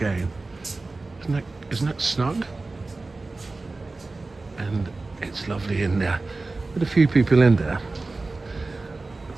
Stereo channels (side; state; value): left; quieter; 3.4 dB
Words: Isn't that snug? And it's lovely in there. With a few people in there.